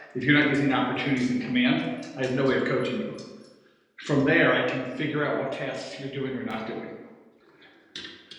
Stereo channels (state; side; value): identical; both; correlation 1.00